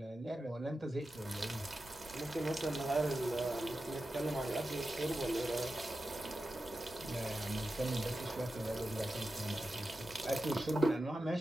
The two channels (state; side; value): normal; both; correlation 0.92